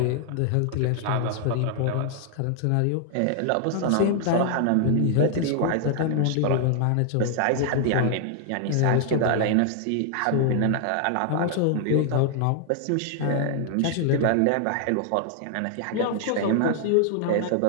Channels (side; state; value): both; different; correlation 0.00